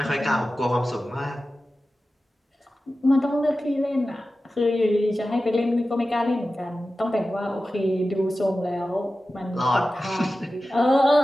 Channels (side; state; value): both; normal; correlation 0.94